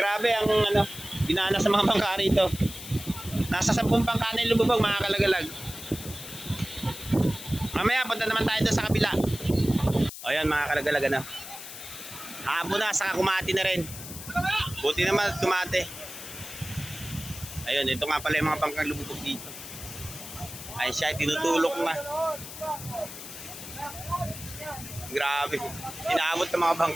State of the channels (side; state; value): left; noise; hiss, 12 dB below the sound